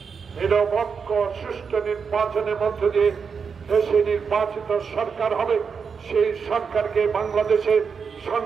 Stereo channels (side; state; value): left; quieter; 5.9 dB